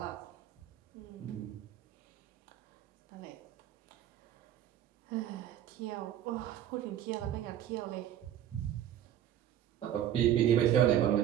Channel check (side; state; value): left; quieter; 11.0 dB